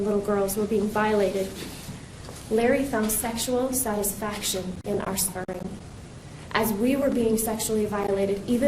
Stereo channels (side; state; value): both; identical; correlation 1.00